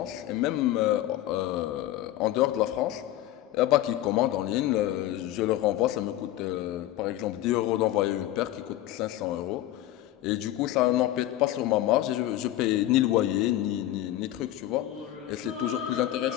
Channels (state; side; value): quieter; right; 13.9 dB